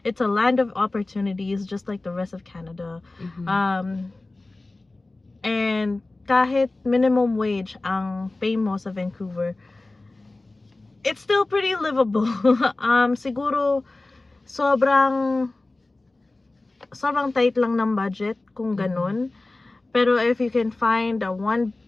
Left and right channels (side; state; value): right; quieter; 3.0 dB